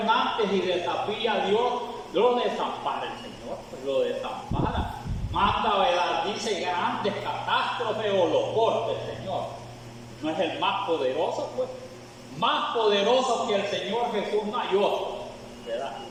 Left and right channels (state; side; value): identical; both; correlation 1.00